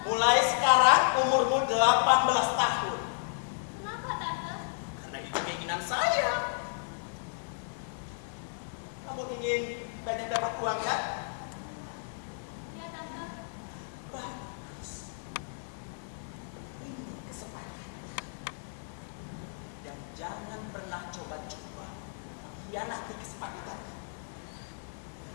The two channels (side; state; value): right; silent; 56 dB below the other